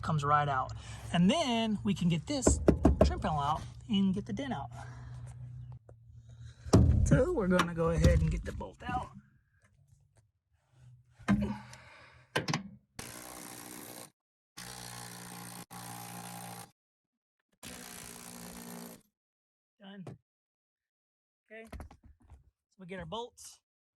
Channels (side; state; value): both; identical; correlation 1.00